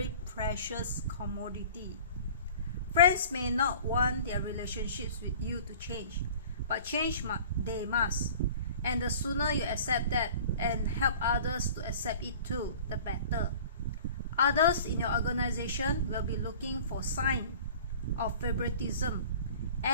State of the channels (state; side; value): inverted; both; correlation -0.44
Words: precious commodity. Friends may not want their relationships with you to change, but change they must. And the sooner you accept that and help others to accept it too, the better. Others in your organization will be looking for signs of favoritism